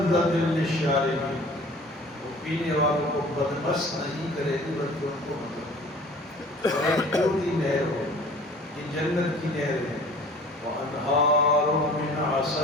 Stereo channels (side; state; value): both; normal; correlation 0.47